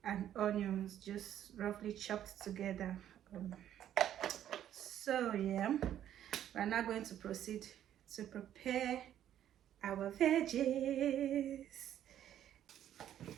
and onions just roughly chopped together. So yeah, we're now going to proceed to prepare our veggies.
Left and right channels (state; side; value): quieter; left; 11.0 dB